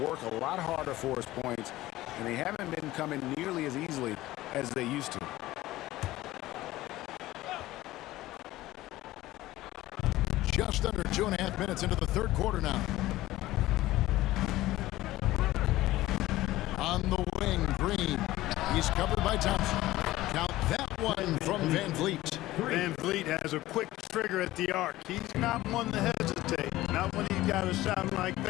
a lot harder for his points, and they haven't been coming nearly as easily as they used to. Just under 2.5 minutes into the third quarter now. On the wing, Green. He's covered by Thompson. Count that one from Van Vliet. Van Vliet has a quick trigger at the arc. He's not one to hesitate. Not when he's got a shot like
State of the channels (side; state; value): right; quieter; 16.7 dB